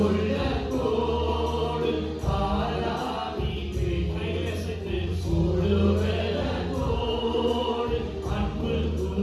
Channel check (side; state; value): both; identical; correlation 1.00